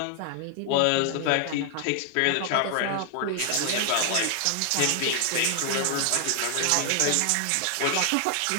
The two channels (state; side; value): different; both; correlation 0.00